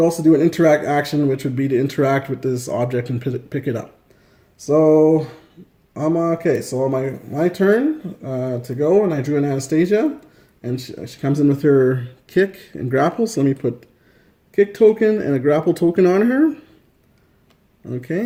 do an interact action, which would be to interact with this object and pick it up. So I'm okay. So my turn to go, and I drew an Anastasia, and she comes in with her kick and grapple. So let me put kick token and a grapple token on her.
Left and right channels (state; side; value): identical; both; correlation 1.00